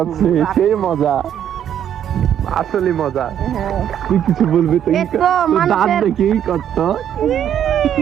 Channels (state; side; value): quieter; left; 9.8 dB